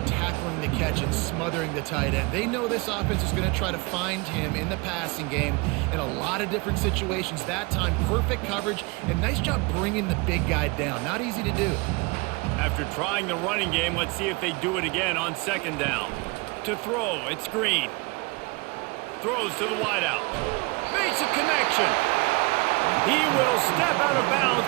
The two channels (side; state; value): left; quieter; 27.2 dB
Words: tackling the catch and smothering the tight end. They know this offense is going to try to find him in the passing game in a lot of different situations. That time, perfect coverage and nice job bringing the big guy down. Not easy to do. After trying the running game, let's see if they do it again on 2nd down. To throw, it's Green. Throws to the wideout. Makes a connection. He will step out of bounds,